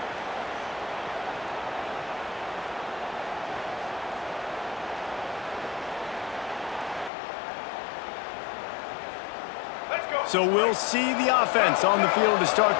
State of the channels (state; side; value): drops out; right; at 7.1 s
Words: So we'll see the offense on the field to